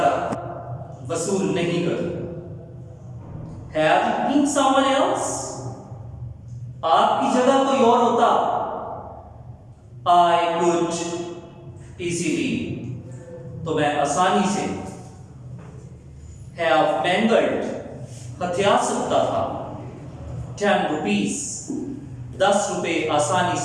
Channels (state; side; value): identical; both; correlation 1.00